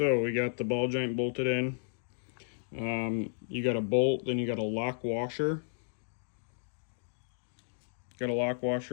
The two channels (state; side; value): silent; right; digital silence